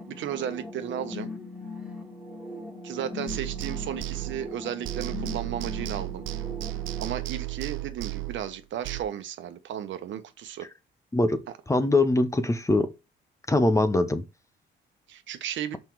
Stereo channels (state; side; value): normal; both; correlation 0.62